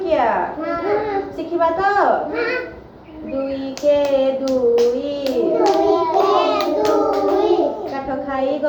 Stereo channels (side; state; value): both; identical; correlation 1.00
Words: ଶିଖିବା ତ। 2 କେ 2 କାଠ ଖାଇ